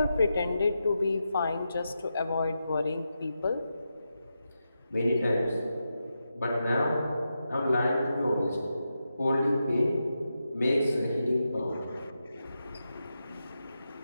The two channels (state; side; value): inverted; both; correlation -0.88